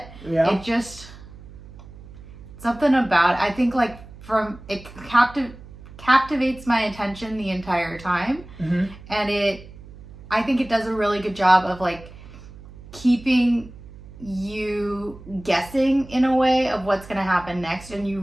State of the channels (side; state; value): right; noise; hum, 18 dB below the sound